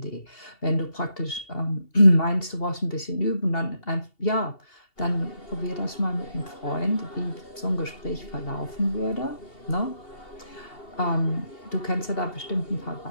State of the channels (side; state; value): right; late; 2.7 ms